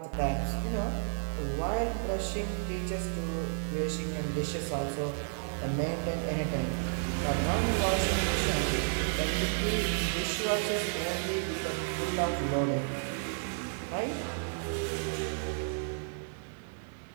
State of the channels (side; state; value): left; silent; digital silence